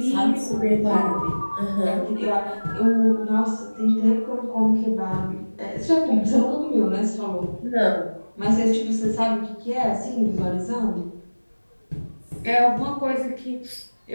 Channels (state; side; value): inverted; both; correlation -1.00